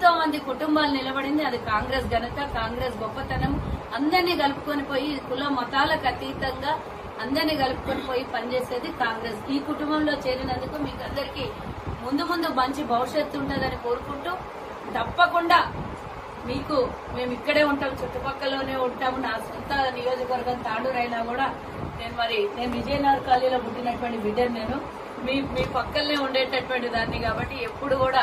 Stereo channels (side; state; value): both; identical; correlation 1.00